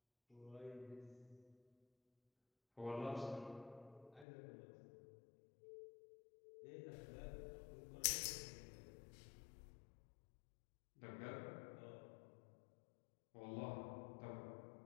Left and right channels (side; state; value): right; drops out; at 4.2 s